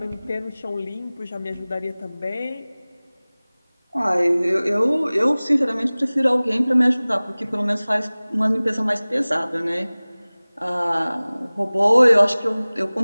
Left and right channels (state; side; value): inverted; both; correlation -0.99